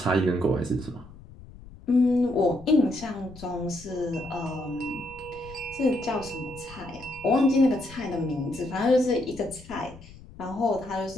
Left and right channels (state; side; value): noise; left; rumble, 18 dB below the sound